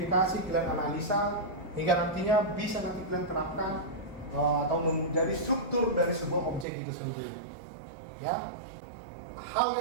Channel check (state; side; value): drops out; left; at 6.7 s